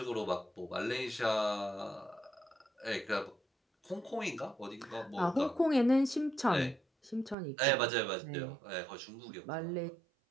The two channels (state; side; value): drops out; left; at 7.4 s